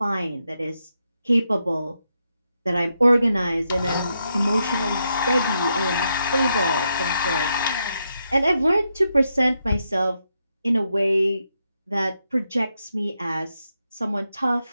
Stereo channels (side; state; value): both; inverted; correlation -0.82